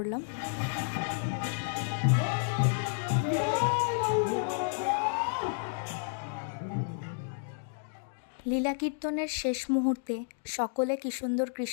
লীলা কীর্তনের শেষ মুহূর্তে সকলে কি সুন্দর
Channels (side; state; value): right; silent; digital silence